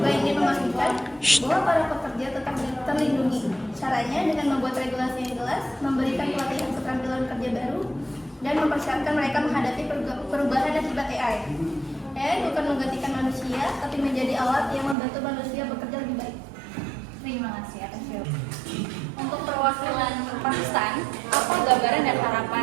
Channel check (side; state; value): left; drops out; at 15.0 s